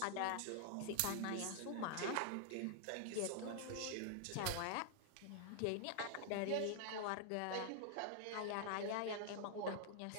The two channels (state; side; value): different; both; correlation -0.01